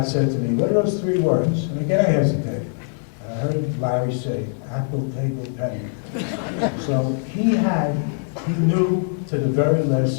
said to me, what are those 3 words? And again, I hesitated. I heard Larry say, apple, table, penny. So he knew to the very last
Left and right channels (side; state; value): right; silent; 64 dB below the other